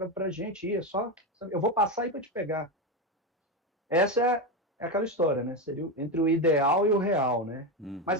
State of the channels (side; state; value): both; normal; correlation 0.13